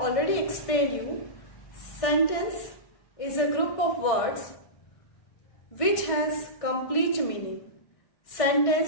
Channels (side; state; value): right; late; 1.6 ms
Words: explained you, sentence is a group of words which has complete meaning.